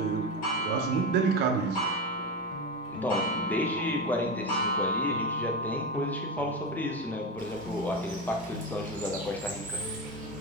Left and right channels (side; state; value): both; normal; correlation 0.19